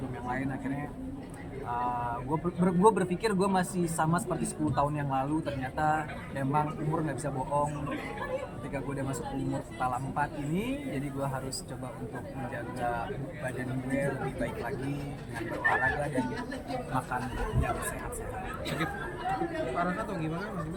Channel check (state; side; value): identical; both; correlation 1.00